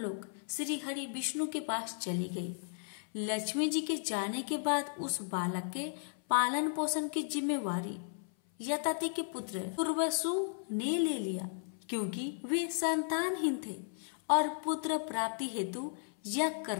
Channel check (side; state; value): right; silent; 54 dB below the other